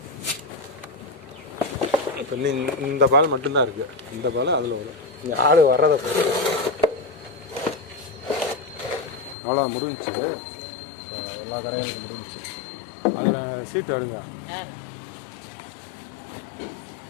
இப்போ இந்த பால் மட்டும்தான் இருக்குது. இந்த பால் அதில் வரும். இங்கே ஆள் வர்றதை அவ்வளோ முடிஞ்சிச்சு. எல்லா கரையும் முடிஞ்சிச்சு. அதில் சீட்டு எடுங்க.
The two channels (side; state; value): right; drops out; at 9.3 s